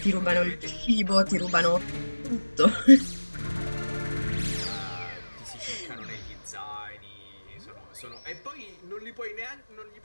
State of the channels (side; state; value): both; inverted; correlation -1.00